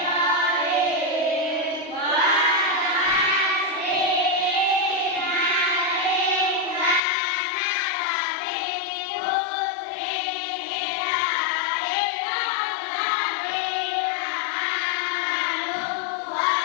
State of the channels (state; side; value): drops out; right; at 7.0 s